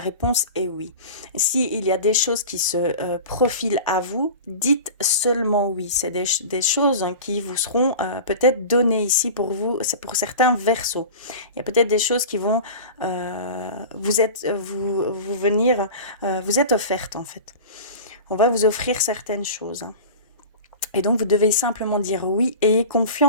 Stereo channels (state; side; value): inverted; both; correlation -0.34